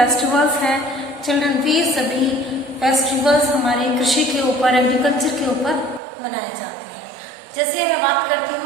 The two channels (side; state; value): left; drops out; at 6.0 s